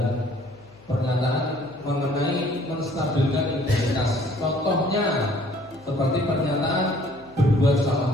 pernyataan mengenai menstabilkan identitas. Contohnya seperti pernyataan berbuat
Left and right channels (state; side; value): noise; left; hum, 26 dB below the sound